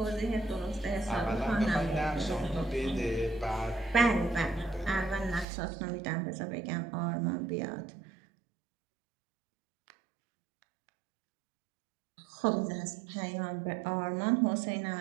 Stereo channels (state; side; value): drops out; left; at 5.5 s